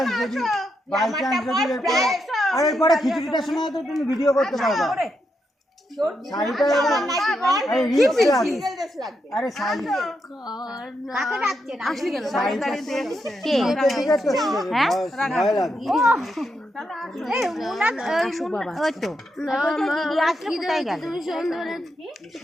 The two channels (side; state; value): both; normal; correlation 0.83